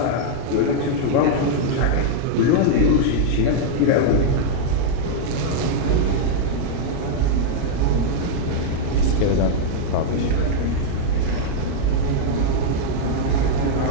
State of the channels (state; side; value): different; both; correlation -0.01